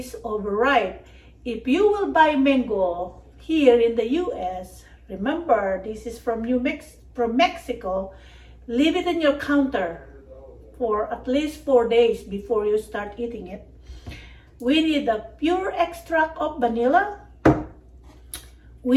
overripe. If you will buy mango here in the US, remember this is from Mexico, leave it in your counter for at least 4 days before you start eating it. We need the pure extract of vanilla.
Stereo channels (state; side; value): identical; both; correlation 1.00